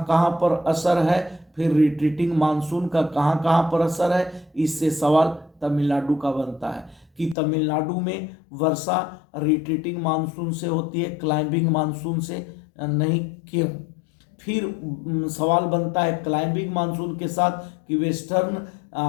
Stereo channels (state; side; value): drops out; right; at 7.4 s